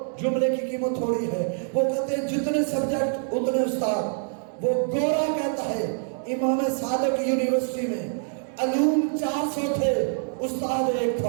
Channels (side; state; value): left; silent; digital silence